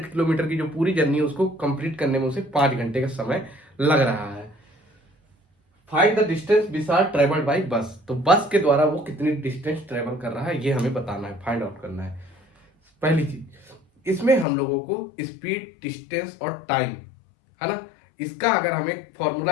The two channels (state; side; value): drops out; right; at 14.5 s